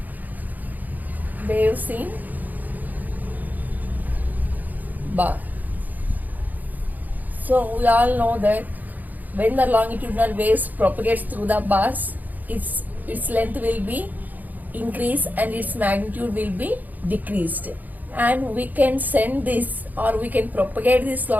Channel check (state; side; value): late; left; 0.082 ms